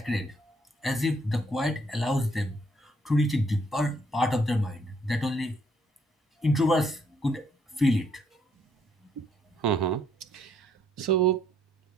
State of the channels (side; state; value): both; normal; correlation 0.69